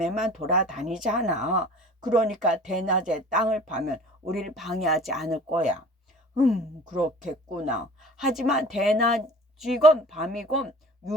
돌아다니잖아. 그러니까 대낮에 땅을 파면 우리를 방해하지 않을 거야. 그렇겠구나. 하지만 대낮이건 밤이건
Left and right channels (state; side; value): normal; both; correlation 0.44